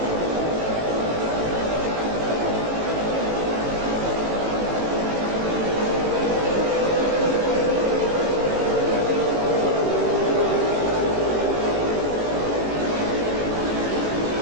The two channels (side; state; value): left; late; 18 ms